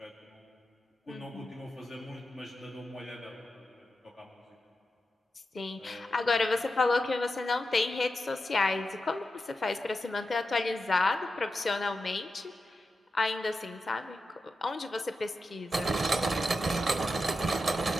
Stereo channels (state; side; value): normal; both; correlation 0.90